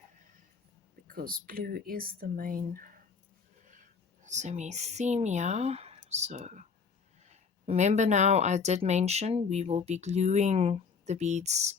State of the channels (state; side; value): quieter; right; 5.6 dB